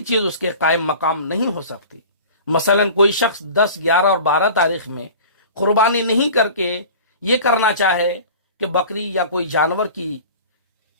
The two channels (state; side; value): inverted; both; correlation -0.40